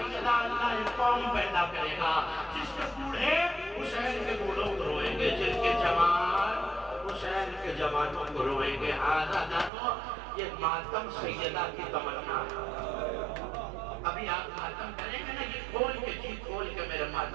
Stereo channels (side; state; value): left; drops out; at 9.7 s